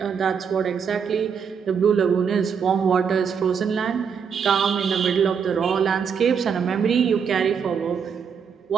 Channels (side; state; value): left; quieter; 6.7 dB